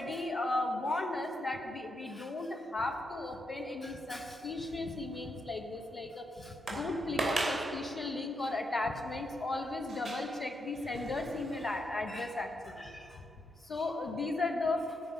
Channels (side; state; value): both; normal; correlation 0.82